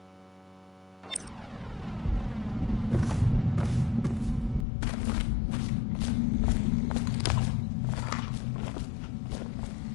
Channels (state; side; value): drops out; right; at 4.7 s